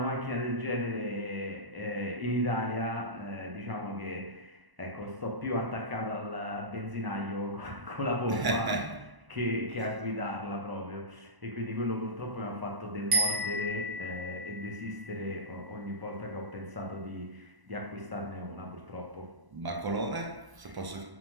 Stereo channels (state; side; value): late; left; 1.0 ms